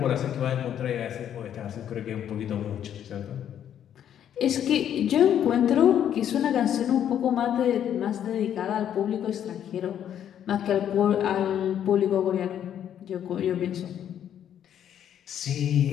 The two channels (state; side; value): quieter; right; 9.9 dB